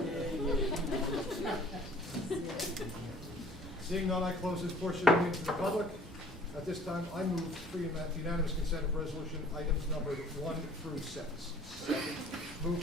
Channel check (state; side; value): normal; both; correlation 0.52